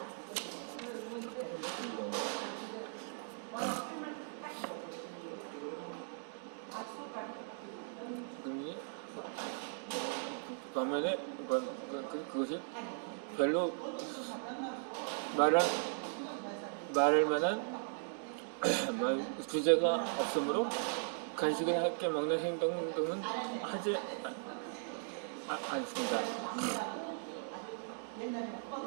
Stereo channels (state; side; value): silent; left; digital silence